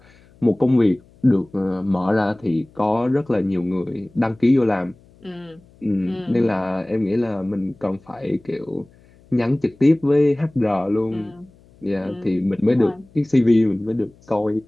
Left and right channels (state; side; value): noise; left; hum, 28 dB below the sound